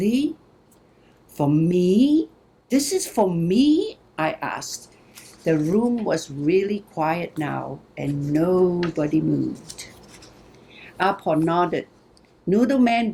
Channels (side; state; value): both; identical; correlation 1.00